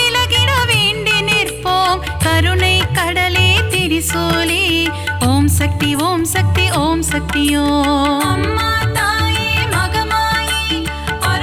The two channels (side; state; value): both; identical; correlation 1.00